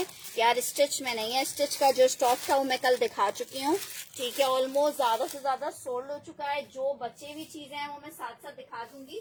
यार स्टिच में नहीं है, स्टिच का जो स्टॉक था वो मैं कल दिखा चुकी हूँ। ठीक है, ऑलमोस्ट ज्यादा से ज्यादा सोल्ड हो चुका है। जो बचे हुई चीजें हैं वो मैं साथ साथ दिखा दूंगी।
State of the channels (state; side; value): identical; both; correlation 1.00